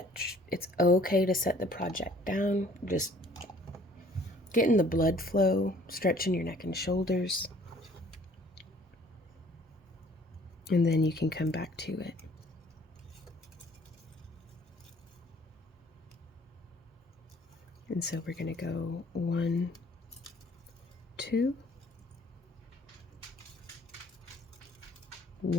It's okay to set the project down. Just getting the blood flow, stretching your neck and shoulders, and then you can come back to it. And so we're going to go 1, 2,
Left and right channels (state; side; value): normal; both; correlation 0.57